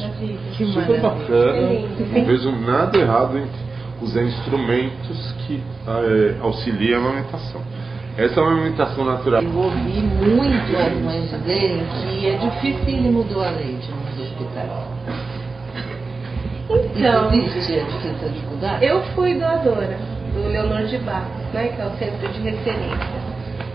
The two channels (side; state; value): left; quieter; 4.0 dB